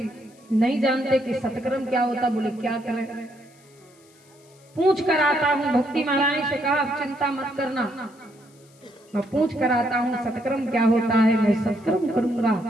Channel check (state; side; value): noise; left; hiss, 29 dB below the sound